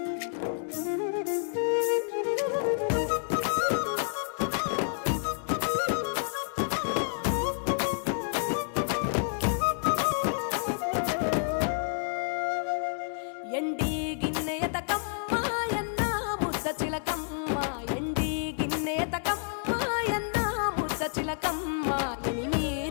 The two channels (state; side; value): silent; right; digital silence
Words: ఎండి గిన్నె ఎతకమ్మ ఎన్న ముద్ద చిలకమ్మ ఎండి గిన్నె ఎతకమ్మ ఎన్న ముద్ద చిలకమ్మ